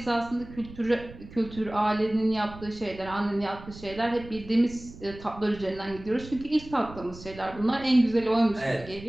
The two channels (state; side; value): noise; right; rumble, 16 dB below the sound